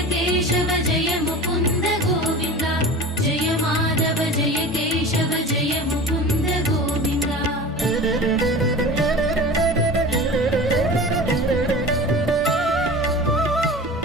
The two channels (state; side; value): normal; both; correlation 0.36